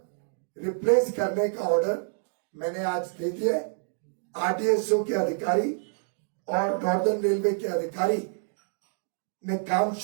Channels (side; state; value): left; silent; digital silence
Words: रिप्लेस करने का ऑर्डर मैंने आज दे दिया है। आरडीएसओ के अधिकारी और नॉर्दर्न रेलवे के अधिकारी ने काम